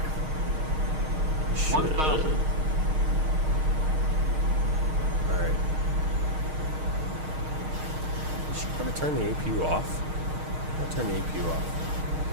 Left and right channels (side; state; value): left; late; 6.5 ms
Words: 1,000. Alright. Should I probably turn the APU off? I'll turn the APU off.